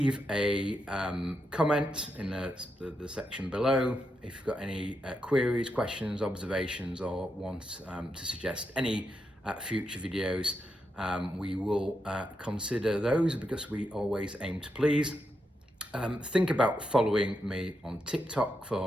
a comment in the section below if you've got any queries, questions, observations, or want to suggest any future videos. We will consider those because we always aim to please. Think about following me on TikTok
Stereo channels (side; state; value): both; normal; correlation 0.84